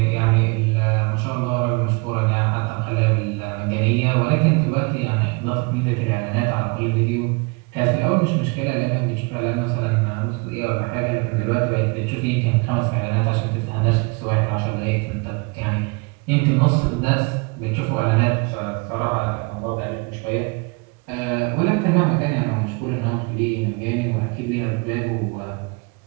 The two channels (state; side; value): quieter; left; 29.9 dB